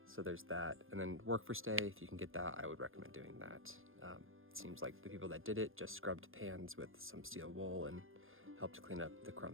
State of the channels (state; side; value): late; left; 0.60 ms